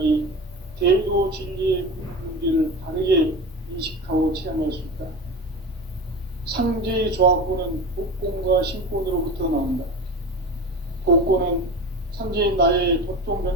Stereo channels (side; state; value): both; normal; correlation 0.29